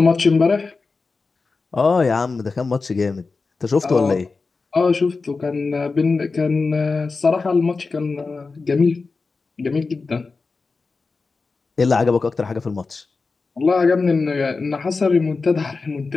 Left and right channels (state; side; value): quieter; right; 4.2 dB